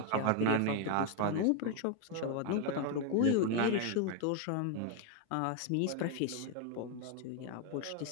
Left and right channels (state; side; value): different; both; correlation 0.01